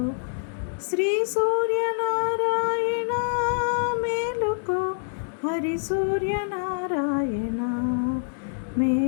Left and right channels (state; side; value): silent; right; 61 dB below the other